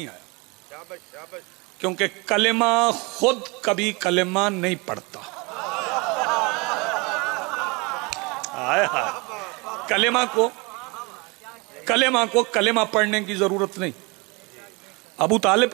آیا، کیونکہ کلمہ خود کبھی کلمہ نہیں پڑھتا۔ کلمہ کو کلمہ پڑھنے کی ضرورت نہیں۔ ابو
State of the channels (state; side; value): quieter; left; 27.6 dB